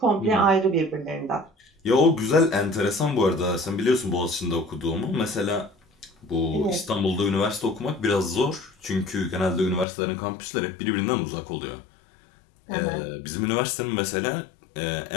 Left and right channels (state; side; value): drops out; right; at 9.9 s